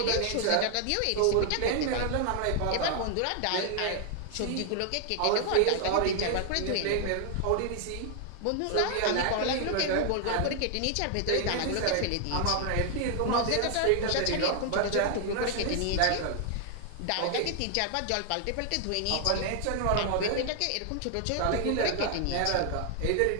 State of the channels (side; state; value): both; different; correlation 0.00